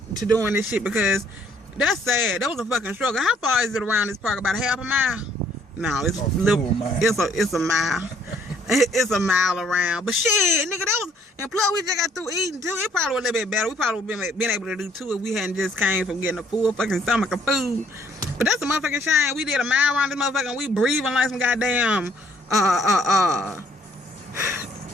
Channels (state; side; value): normal; both; correlation 0.64